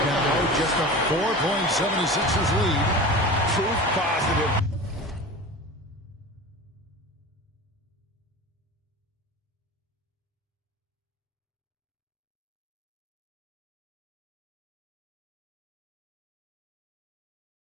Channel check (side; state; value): both; normal; correlation 0.33